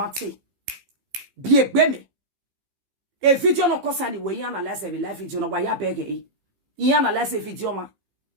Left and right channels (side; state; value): left; late; 15 ms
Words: Bi egbe me. E video no kosa ni we analyze every live video no wa ya bege e. I analyze video ma.